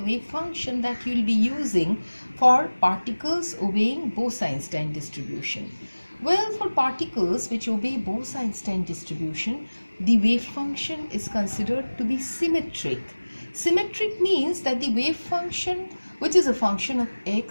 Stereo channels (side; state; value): both; inverted; correlation -1.00